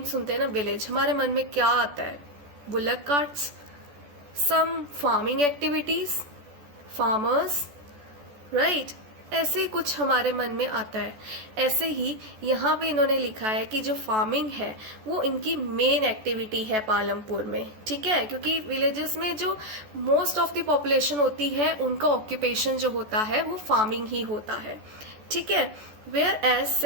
सुनते हैं ना विलेज, हमारे मन में क्या आता है? बुलक कार्ट्स, सम फार्मिंग एक्टिविटीज, फार्मर्स, राइट, ऐसे कुछ हमारे मन में आता है। ऐसे ही यहाँ पे इन्होंने लिखा है कि जो फार्मिंग है वो इनकी मेन एक्टिविटी है पालमपुर में। ठीक है, क्योंकि विलेजेस में जो मोस्ट ऑफ द पॉपुलेशन होती है उनका ऑक्यूपेशन जो होता है वो फार्मिंग ही होता है। ठीक है, whereas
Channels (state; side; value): late; left; 14 ms